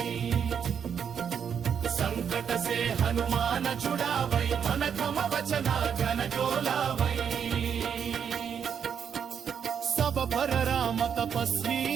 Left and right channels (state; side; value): quieter; left; 7.6 dB